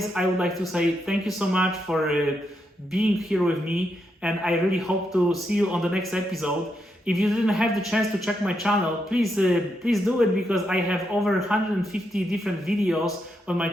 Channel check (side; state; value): both; normal; correlation 0.82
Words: I would like to say thank you so much for being here with me, and I really hope to see you on the next episode. If you didn't have the chance to check my channel, please do it, because I have over 150 different videos on my